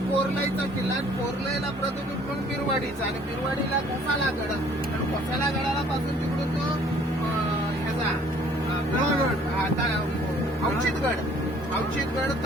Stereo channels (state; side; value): normal; both; correlation 0.57